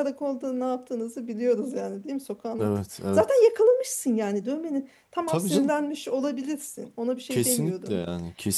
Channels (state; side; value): identical; both; correlation 1.00